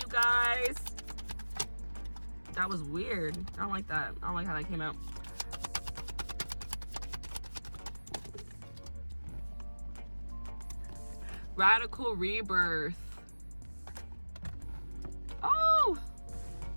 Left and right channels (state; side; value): inverted; both; correlation -1.00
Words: guys. That was weird. I don't like that. I don't like how that came out. Radical rebirth. Oh!